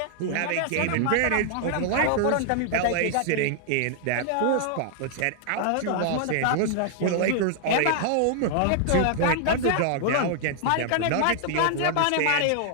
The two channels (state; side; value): different; both; correlation 0.00